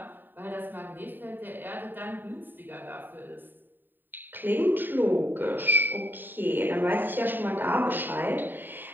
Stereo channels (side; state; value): left; late; 0.092 ms